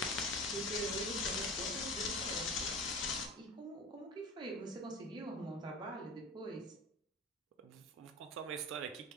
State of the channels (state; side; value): normal; both; correlation 0.33